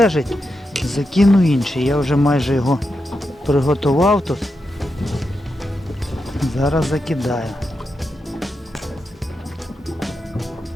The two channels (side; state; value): both; normal; correlation 0.87